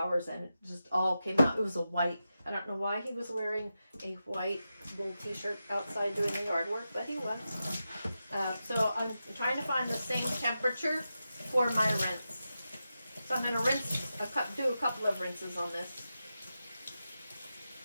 and it just all came out. It was a white. I don't know why he was wearing a white wool t-shirt outside doing the yard work, but he was. So I'm trying to find the same temperature for my rinse. So I'm going to rinse, do a couple of rinses on this.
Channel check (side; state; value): both; inverted; correlation -0.90